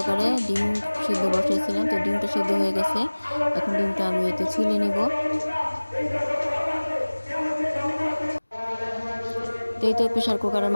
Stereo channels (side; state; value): both; inverted; correlation -1.00